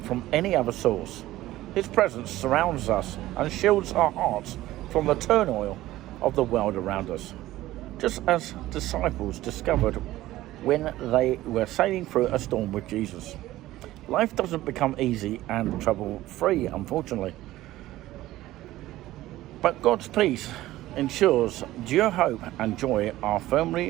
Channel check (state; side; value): quieter; left; 15.9 dB